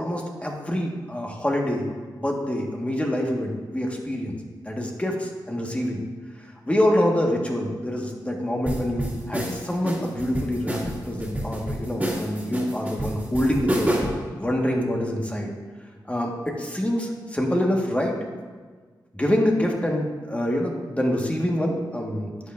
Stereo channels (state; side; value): normal; both; correlation 0.90